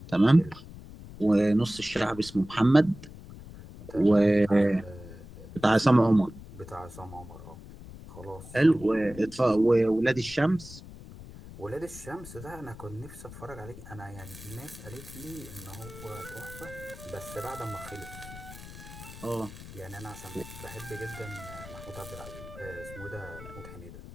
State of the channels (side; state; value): left; noise; rumble, 15 dB below the sound